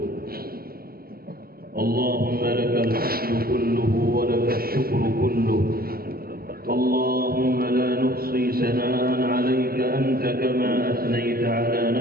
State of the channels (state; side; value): late; left; 0.43 ms